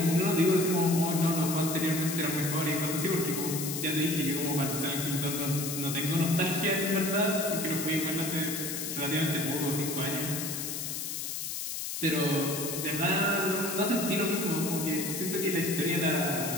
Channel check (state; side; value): noise; left; hiss, 4 dB below the sound